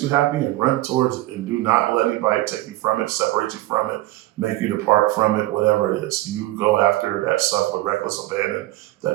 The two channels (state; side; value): quieter; left; 17.4 dB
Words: you happy and run towards it. And do not let anybody take you from it, separate you from it, make you depart from it, whatever it is. You go after that stuff with reckless abandon